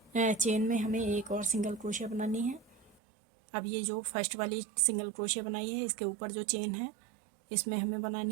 चेन में हमें एक और सिंगल क्रोशिया बनानी है। अब ये जो फर्स्ट वाली सिंगल क्रोशिया बनाई है इसके ऊपर जो चेन है इसमें हमें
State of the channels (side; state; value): left; drops out; at 3.0 s